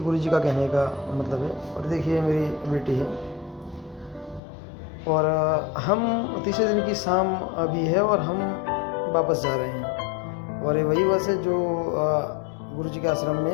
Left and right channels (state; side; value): drops out; right; at 4.4 s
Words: जी का कहने का मतलब है। और देखिए मेरी बेटी है, और हम तीसरे दिन की शाम अभी है और हम वापस जा रहे हैं। और ये वही बस है जो गुरु जी के आश्रम